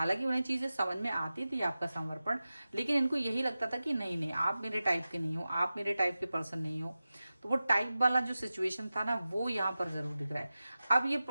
उन्हें चीजें समझ में आती थी, आपका समर्पण, लेकिन इनको यही लगता था कि नहीं नहीं, आप मेरे टाइप के नहीं हो, आप मेरे टाइप के पर्सन नहीं हो। तो वो टाइप वाला जो सिचुएशन था ना, वो यहाँ पर जरूर दिख रहा है। अब ये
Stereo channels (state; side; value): inverted; both; correlation -0.95